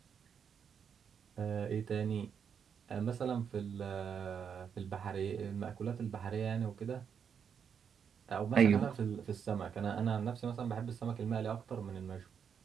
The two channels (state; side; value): quieter; left; 7.3 dB